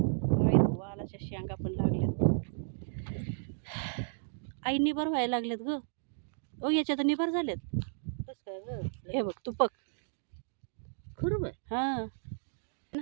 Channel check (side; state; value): left; silent; digital silence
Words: वालाच्या शेंगा पण लागल्यात. आई निबर व्हायला लागलेत ग. ओ याच्यात निबर झालेत. हे बघ तुपक खरं हा ना.